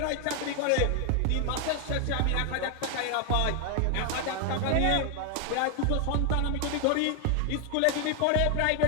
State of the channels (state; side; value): different; both; correlation 0.01